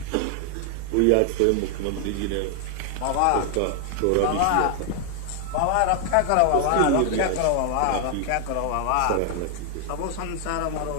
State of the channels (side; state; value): both; different; correlation 0.00